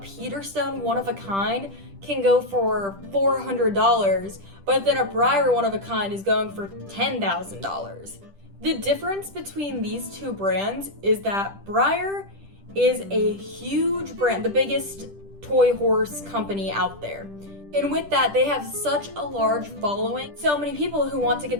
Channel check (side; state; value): left; late; 10 ms